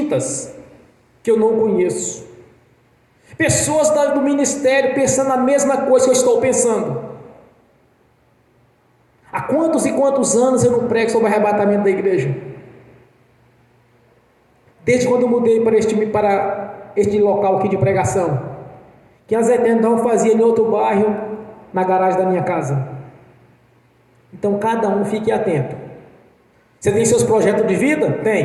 que eu não conheço. Pessoas do ministério pensando a mesma coisa que eu estou pensando. Há quantos e quantos anos eu não prego sobre o arrebatamento da igreja? Desde quando eu mudei para este local aqui de pregação, que a Zé Tendão fazia em outro bairro, na garagem da minha casa. Então cada um fique atento. Você tem seus projetos de vida?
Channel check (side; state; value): both; identical; correlation 1.00